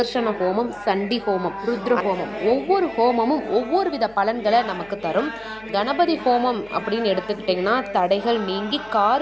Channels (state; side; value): noise; left; hum, 27 dB below the sound